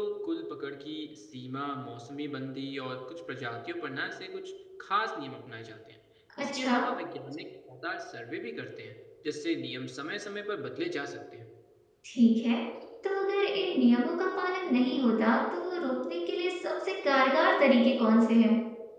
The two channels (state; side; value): identical; both; correlation 1.00